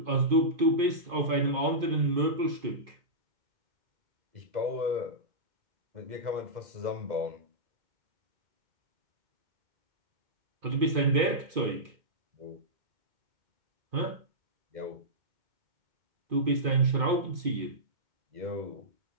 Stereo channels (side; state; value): left; late; 2.5 ms